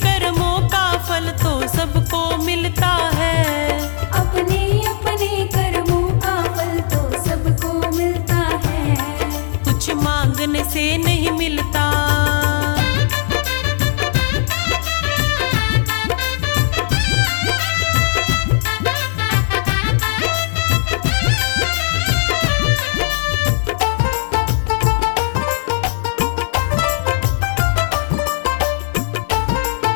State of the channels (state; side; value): silent; right; 68 dB below the other